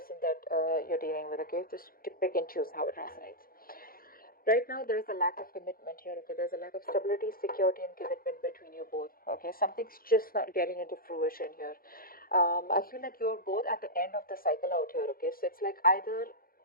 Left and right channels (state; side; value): late; right; 0.42 ms